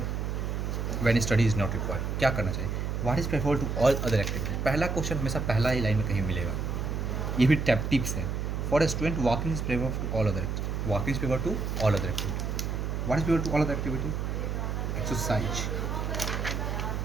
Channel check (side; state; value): right; noise; hum, 2 dB below the sound